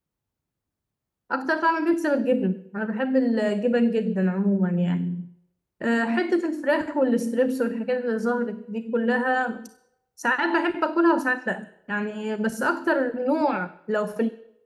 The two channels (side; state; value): both; identical; correlation 1.00